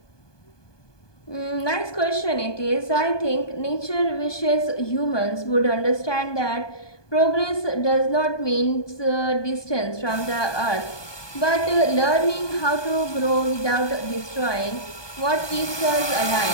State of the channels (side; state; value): right; late; 1.2 ms